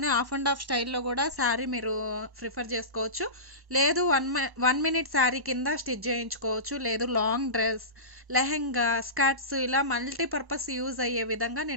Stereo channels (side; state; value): left; late; 1.1 ms